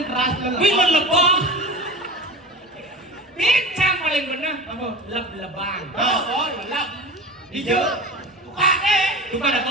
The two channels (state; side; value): normal; both; correlation 0.31